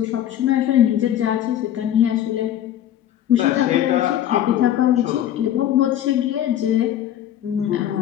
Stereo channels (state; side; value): quieter; right; 11.3 dB